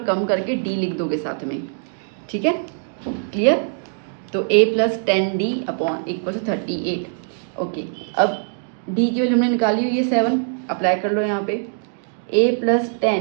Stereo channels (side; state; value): left; silent; digital silence